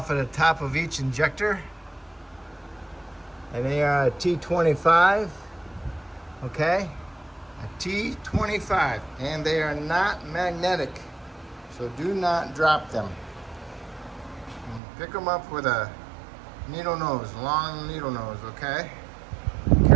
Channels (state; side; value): drops out; left; at 14.8 s